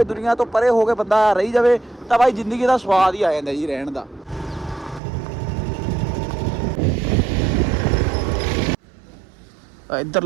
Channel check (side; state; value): left; drops out; at 5.0 s